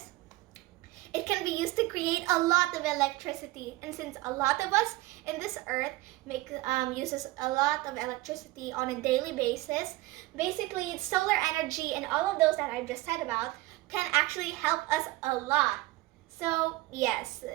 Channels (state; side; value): quieter; left; 19.2 dB